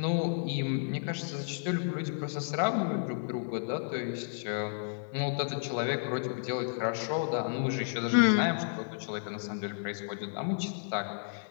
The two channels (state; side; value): silent; right; 56 dB below the other